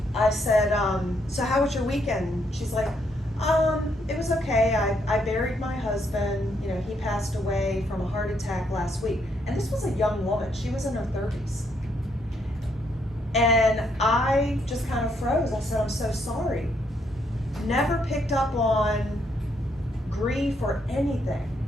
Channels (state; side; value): normal; both; correlation 0.74